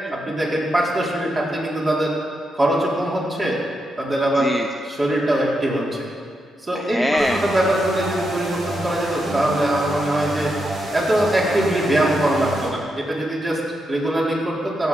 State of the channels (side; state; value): both; normal; correlation 0.84